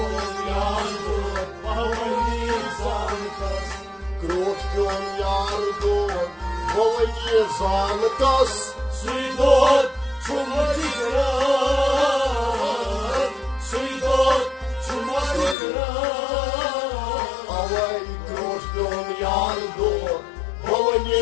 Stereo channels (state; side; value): drops out; right; at 15.6 s